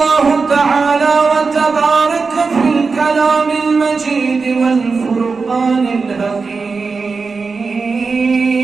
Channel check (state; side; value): quieter; left; 4.6 dB